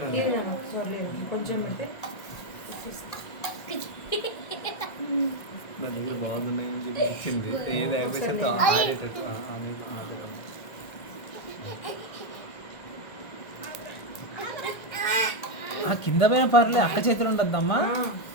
ఉన్నాయి. కొంచెం నా దగ్గర బాగున్నాయని చెప్పి ఇచ్చింది. ఏది అయిపోతే ఆ కింద పైన పర్లేదు అక్క చేతులు ఉండద్దమ్మా.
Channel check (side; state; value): right; late; 1.7 ms